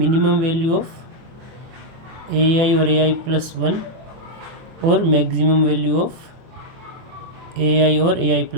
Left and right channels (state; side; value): late; left; 23 ms